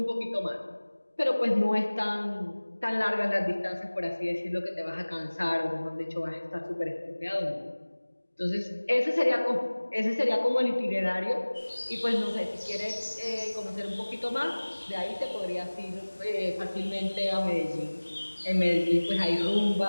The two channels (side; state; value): both; inverted; correlation -1.00